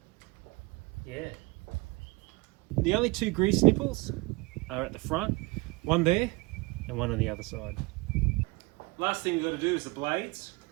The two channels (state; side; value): quieter; left; 24.4 dB